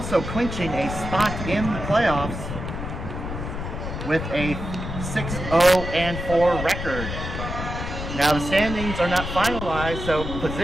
clinching a spot in the playoffs with a 6-0-4 record. Now, the standings are not finalized, so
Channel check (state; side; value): noise; left; rumble, 6 dB below the sound